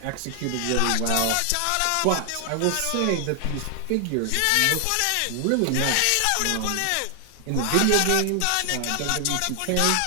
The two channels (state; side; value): different; both; correlation 0.00